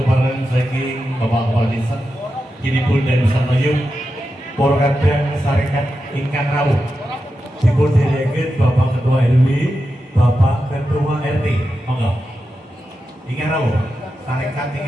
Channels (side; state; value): both; normal; correlation 0.89